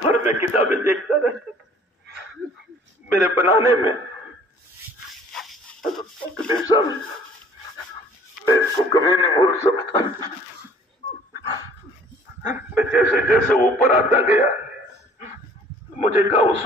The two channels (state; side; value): normal; both; correlation 0.53